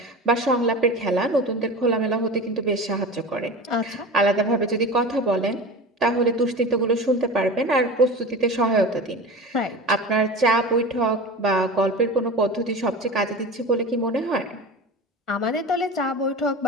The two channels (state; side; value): normal; both; correlation 0.31